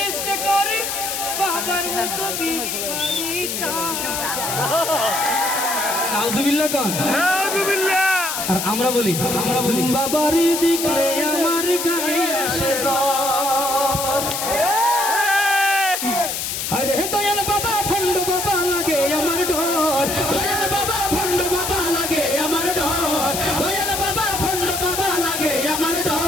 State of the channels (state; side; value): noise; left; hiss, 3 dB below the sound